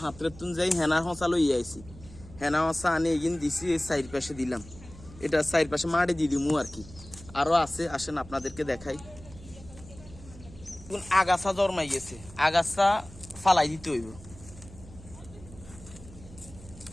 হাতের তুন যাই হেনা হসা লই আইছি। হেনা হসা আনে এগিন দিছি, এই সাইড পাশে দিলাম। এটা সাইড পাশে মাটি দিয়ে দিমু আর কি। আরো আছে, আসেন আপনাদেরকে দেখাই। আগাছা জন্মাই গেছে, আগাছা ফালাই দিতে হইব।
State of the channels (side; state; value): right; noise; hum, 18 dB below the sound